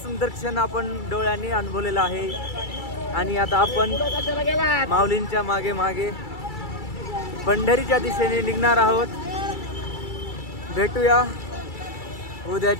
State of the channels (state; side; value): late; right; 2.3 ms